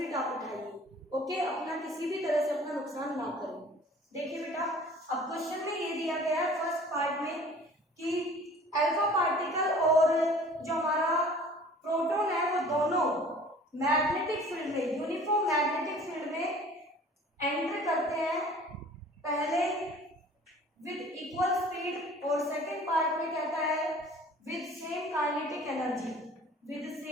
आप उठाइए, ओके। अपना किसी भी तरह से अपना नुकसान ना करें। देखिए बेटा, अब क्वेश्चन में ये दिया गया है फर्स्ट पार्ट में कि अल्फा पार्टिकल और जो हमारा प्रोटॉन है वो दोनों मैग्नेटिक फील्ड में, यूनिफॉर्म मैग्नेटिक फील्ड में एंटर करते हैं, पहले विद इक्वल स्पीड और सेकंड पार्ट में कहता है with same kinetic energy, with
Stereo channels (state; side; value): normal; both; correlation 0.48